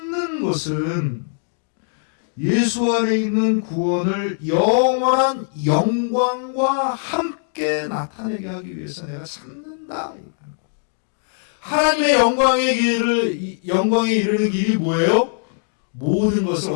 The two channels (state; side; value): silent; right; digital silence